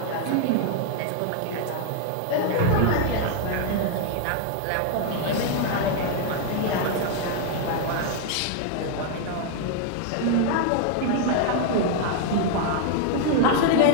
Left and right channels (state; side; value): different; both; correlation 0.00